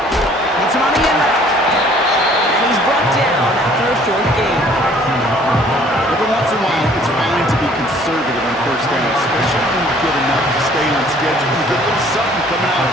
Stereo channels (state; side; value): normal; both; correlation 0.56